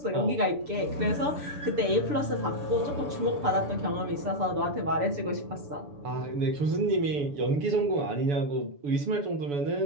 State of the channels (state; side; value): late; left; 6.9 ms